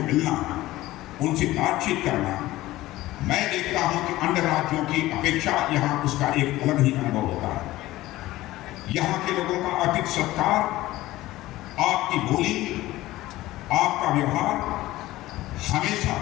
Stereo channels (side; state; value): right; quieter; 16.9 dB